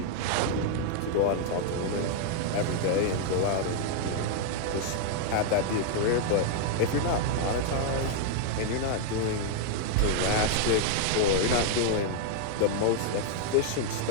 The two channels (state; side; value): different; both; correlation 0.00